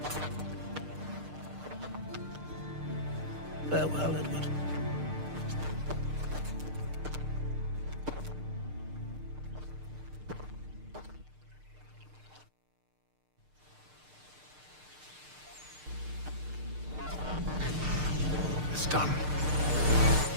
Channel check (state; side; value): late; left; 6.6 ms